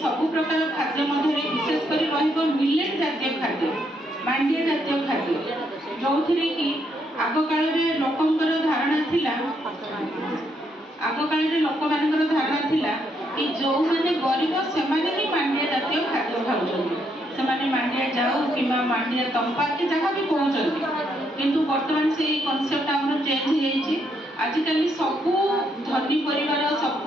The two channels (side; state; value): both; normal; correlation 0.75